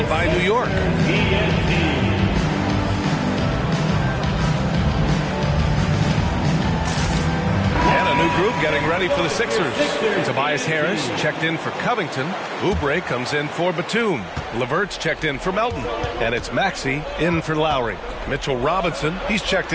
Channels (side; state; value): both; identical; correlation 1.00